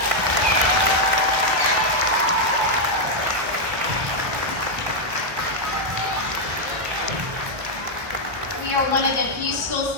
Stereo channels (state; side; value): late; left; 1.3 ms